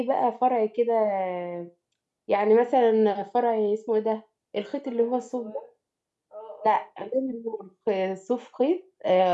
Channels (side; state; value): both; identical; correlation 1.00